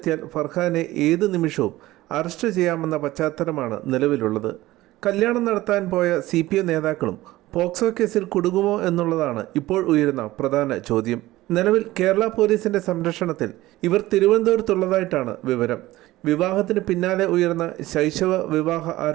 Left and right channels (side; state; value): left; quieter; 17.2 dB